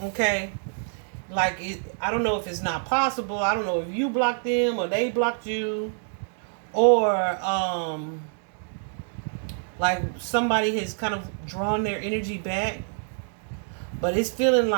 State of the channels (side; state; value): left; silent; digital silence